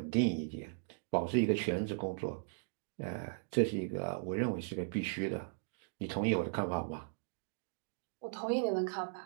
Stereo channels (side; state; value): left; silent; digital silence